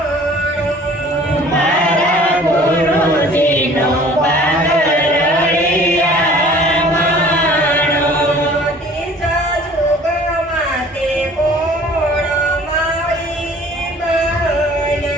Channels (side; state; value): both; normal; correlation 0.50